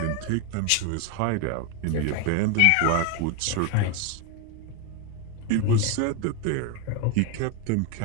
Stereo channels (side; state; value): both; different; correlation 0.01